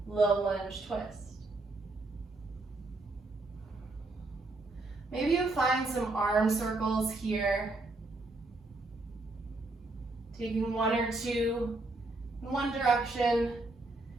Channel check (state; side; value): quieter; left; 3.1 dB